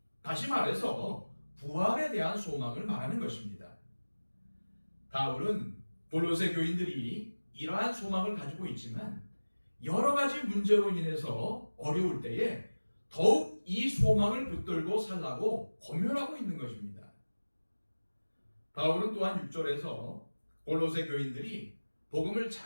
다시 말해서 부활에 대한 소망을 말하는 것입니다. 바울은 골로새 교인들이 이러한 소망을 가지고 있지만 여러 가지 문제로 인해서 어려울 때에 더욱 이 소망을 붙들고 살라고 권면하고 있는 것입니다. 바울은 또한 6절에서 골로새 교인들이 복음을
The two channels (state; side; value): inverted; both; correlation -1.00